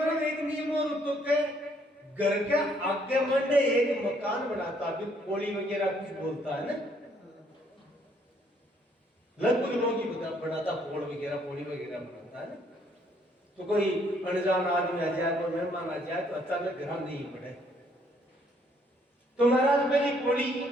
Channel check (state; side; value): normal; both; correlation 0.67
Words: में एक नियम और उत्तो के घर के आगे मंडे एक मकान बनाता भी पोली वगैरह कुछ बोलता है ना लगभग लोग ही बनाता पोल वगैरह पोली वगैरह बनाता है ना तो कोई अनजान आदमी आ जाए कोई मेहमान आ जाए तो अचानक घर नहीं पड़े तो महाराज पहली पोली